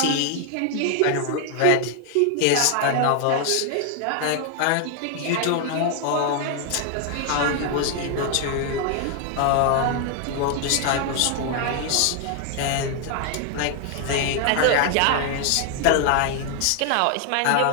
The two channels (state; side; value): different; both; correlation 0.00